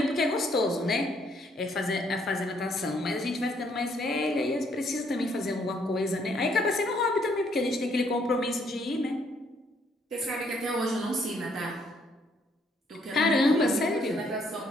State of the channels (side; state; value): both; normal; correlation 0.69